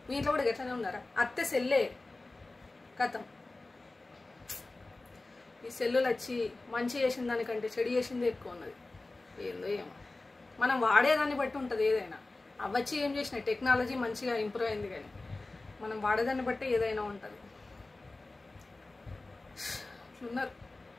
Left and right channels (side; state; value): right; quieter; 3.2 dB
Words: మీ ఇంట్లో కూడా గట్లనే ఉన్నారా? అత్తే సెల్లే కథం. ఈ సెల్లులు వచ్చి మంచి చేసిన దానికంటే చెడు చేసిందే ఎక్కువ ఉన్నది. ఏందో ఏమో, మనం వాడేదాన్ని బట్టి ఉంటుంది ఏదైనా. అవచ్చి ఏం చేసినాయి, టెక్నాలజీ మంచిగా ఇంప్రూవ్ అయింది, కానీ మనం వాడేదాన్ని బట్టి ఏదైనా ఉంటుంది. ఇట్లున్నారు.